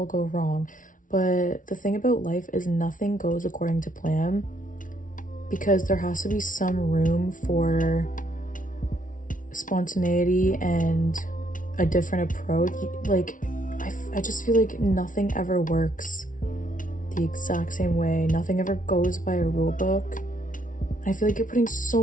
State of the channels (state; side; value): late; right; 0.38 ms